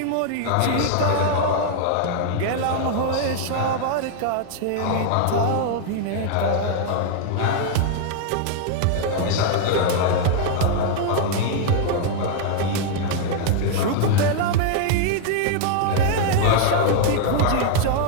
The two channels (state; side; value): different; both; correlation 0.00